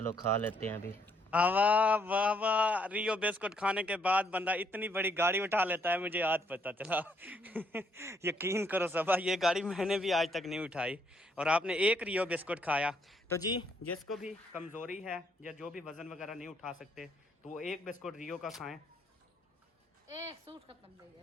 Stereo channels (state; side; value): normal; both; correlation 0.71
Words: खा लेते हैं अभी। वाह वाह वाह, रियो बिस्कुट खाने के बाद बंदा इतनी बड़ी गाड़ी उठा लेता है, मुझे आज पता चला। यकीन करो सबा, ये गाड़ी मैंने भी आज तक नहीं उठाई और आपने एक रियो बिस्कुट खाया। तो जी जिसको भी कमज़ोरी है या जो भी वज़न वगैरह नहीं उठा सकते तो वो एक बिस्कुट रियो का खाएं। सूट खत्म हो